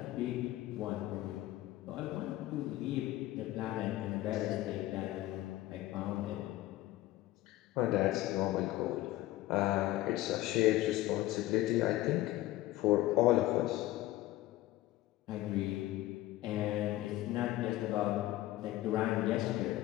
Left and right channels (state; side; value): quieter; right; 16.2 dB